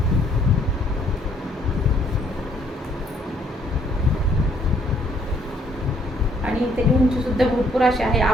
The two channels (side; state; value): both; normal; correlation 0.65